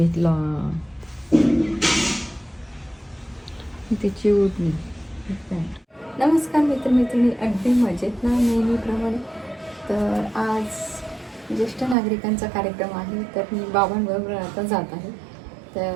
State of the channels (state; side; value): drops out; left; at 12.0 s